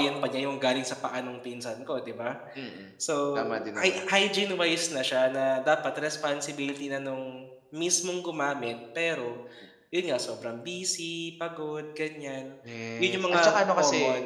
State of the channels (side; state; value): both; identical; correlation 1.00